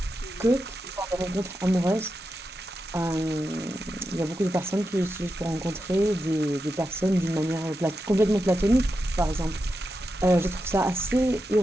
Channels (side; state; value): both; normal; correlation 0.88